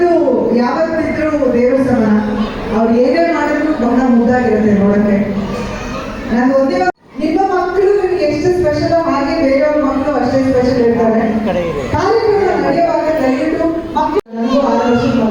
ಯಾವತ್ತಿದ್ರೂ ದೇವರ ಸಮಾನ. ಅವ್ರು ಏನೇ ಮಾಡಿದ್ರು ಬಹಳ ಮುದ್ದಾಗಿರುತ್ತೆ ನೋಡೋಕ್ಕೆ. ನಾನು ಒಂದೇ ನಿಮ್ಮ ಮಕ್ಕಳು ನಿಮ್ಗೆ ಎಷ್ಟು ಸ್ಪೆಷಲ್ ಹಾಗೆ ಬೇರೆಯವ್ರ ಮಕ್ಕಳು ಅಷ್ಟೇ ಸ್ಪೆಷಲ್ ಇರ್ತಾರೆ. ಕಾರ್ಯಕ್ರಮ ನಡೆಯುವಾಗ ದಯವಿಟ್ಟು ಮಕ್ಕಳು ನನಗೂ 6 ವರ್ಷದ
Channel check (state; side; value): identical; both; correlation 1.00